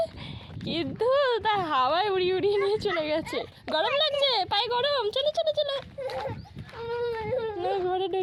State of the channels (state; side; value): identical; both; correlation 1.00